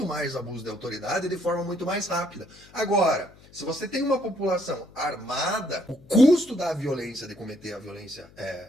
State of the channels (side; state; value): left; noise; hum, 25 dB below the sound